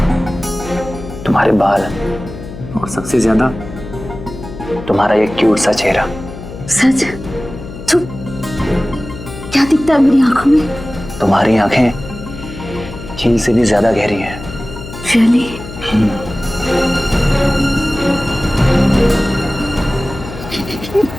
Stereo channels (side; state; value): left; noise; hum, 12 dB below the sound